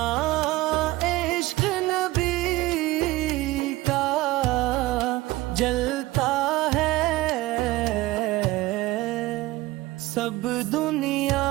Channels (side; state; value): left; quieter; 18.6 dB